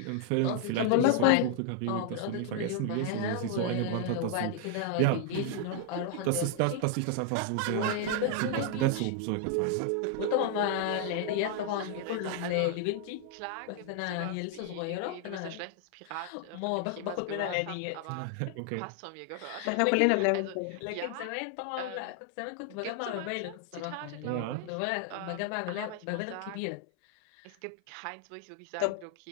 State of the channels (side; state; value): both; different; correlation 0.00